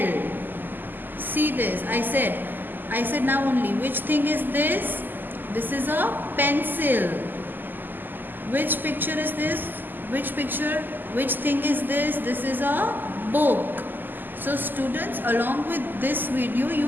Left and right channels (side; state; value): left; late; 0.089 ms